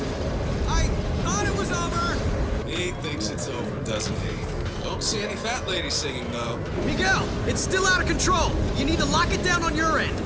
I thought it was over! He thinks it's over, doesn't he? Don't see any fat ladies singing, though. Miguel, it's still out of control. You need to lock it down on your end.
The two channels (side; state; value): both; identical; correlation 1.00